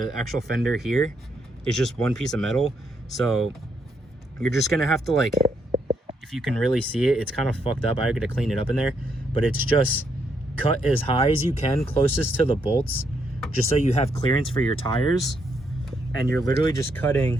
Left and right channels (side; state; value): both; normal; correlation 0.76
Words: actual fender here is just one piece of metal. So you're just gonna have to like, if you can really see it, it's kind of fucked up. I gotta clean it up in there, but it's just cut as high as you can, closest to the bolts, just so you have clearance for your tires. And you're literally just